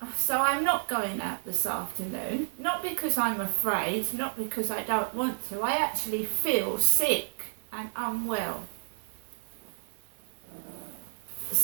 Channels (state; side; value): silent; left; digital silence